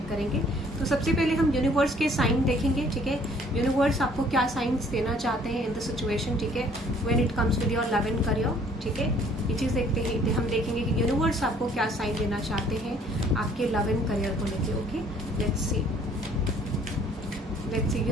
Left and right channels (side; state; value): both; normal; correlation 0.59